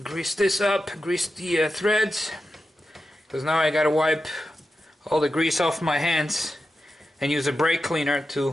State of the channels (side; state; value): both; normal; correlation 0.90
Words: Grease this up, grease the threads, because now I gotta wipe all the grease off my hands and use a brake cleaner